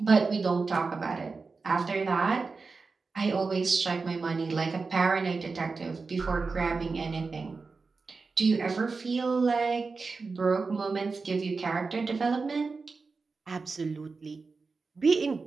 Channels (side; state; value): left; quieter; 4.3 dB